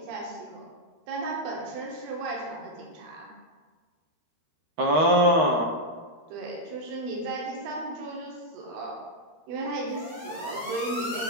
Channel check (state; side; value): late; left; 13 ms